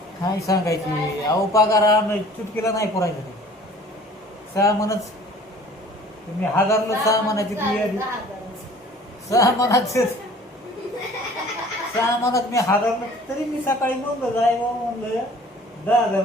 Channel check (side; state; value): both; normal; correlation 0.49